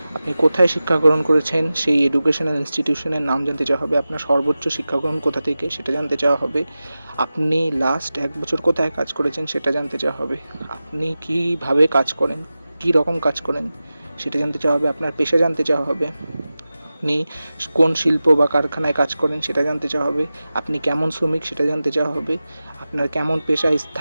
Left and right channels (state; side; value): inverted; both; correlation -0.95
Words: আপনি কোথায় শিক্ষা গ্রহণ করেছেন সেই এডুকেশনাল ইনস্টিটিউশনের নাম জানতে চাওয়া হবে, আপনার সর্বোচ্চ শিক্ষা গ্রহণ কোথা থেকে সেটা জানতে চাওয়া হবে, আপনি লাস্ট 1 বছর কোথায় কাজ করেছেন সেটা জানতে চাওয়া হবে, আপনি কীভাবে কাজ করেন, কী রকম কাজ করেন সেটা জানতে চাওয়া হবে, আপনার পেশা জানতে চাওয়া হবে, আপনি কোন শিল্প বা কারখানায় কাজ করেন সেটা জানতে চাওয়া হবে, আপনি কেমন শ্রমিক সেটা জানতে চাওয়া হবে, আপনার কেমন পেশা